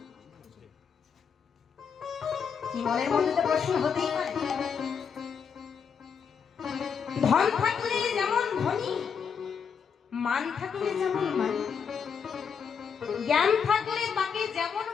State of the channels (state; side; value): quieter; right; 6.6 dB